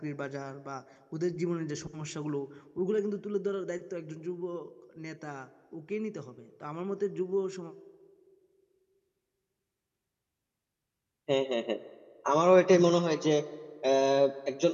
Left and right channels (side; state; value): both; identical; correlation 1.00